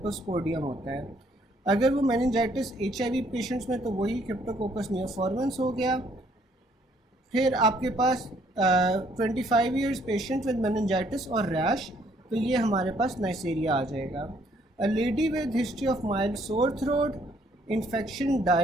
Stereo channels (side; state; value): both; normal; correlation 0.66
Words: होता है। अगर वो मेनिंजाइटिस HIV पेशेंट्स में तो वही क्रिप्टोकोकस नियोफॉर्मेंस हो गया। फिर आपके पास 25 ईयर्स पेशेंट विद मेनिंजाइटिस और रैश, तो ये हमारे पास नाइसेरिया आ जाएगा। A lady with history of mild sore throat, infection